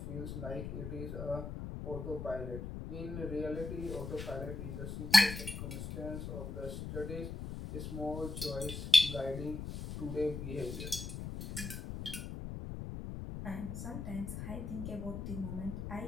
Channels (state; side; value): noise; left; rumble, 6 dB below the sound